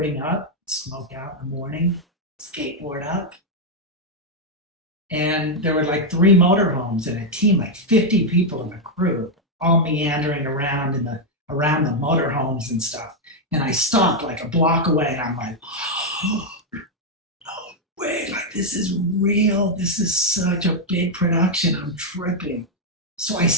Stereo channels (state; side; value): normal; both; correlation 0.00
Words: up, smoke out in the morning, skateboard up. And there were like 3 motorhomes and a team, like 50 people in the crew, all meandering around around the motorhomes and stuff. And I stopped like a block away, and I'm like, oh, no way, like this is real. This is such a big production. I'm tripping. So I